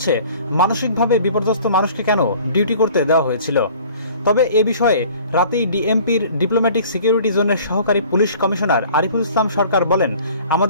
মানসিকভাবে বিপর্যস্ত মানুষকে কেন ডিউটি করতে দেওয়া হয়েছিল? তবে এ বিষয়ে রাতেই ডিএমপির ডিপ্লোম্যাটিক সিকিউরিটি জোনের সহকারী পুলিশ কমিশনার আরিফুল ইসলাম সরকার বলেন,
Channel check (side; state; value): both; inverted; correlation -0.49